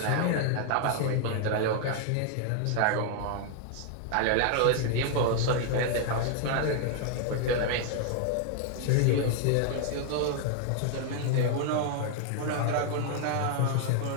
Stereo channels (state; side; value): different; both; correlation 0.00